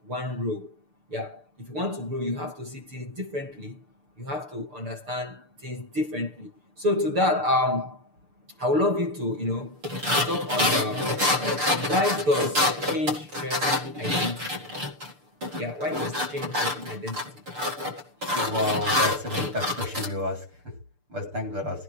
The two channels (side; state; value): left; late; 6.8 ms